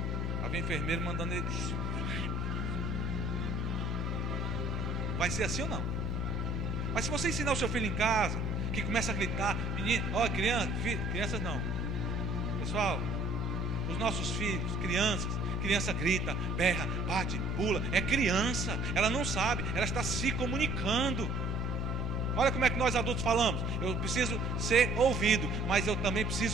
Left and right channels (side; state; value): both; normal; correlation 0.55